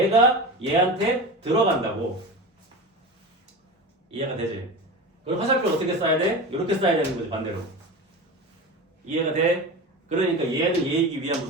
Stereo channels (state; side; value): normal; both; correlation 0.28